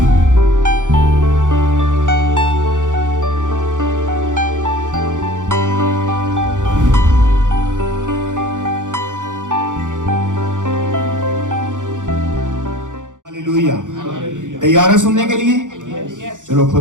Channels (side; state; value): left; late; 0.87 ms